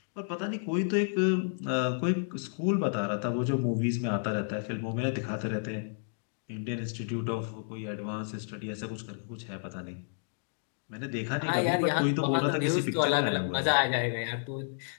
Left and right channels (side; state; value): right; silent; digital silence